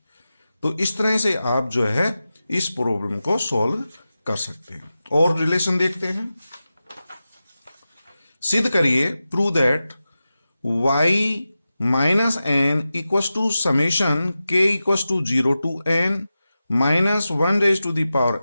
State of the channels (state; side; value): inverted; both; correlation -0.93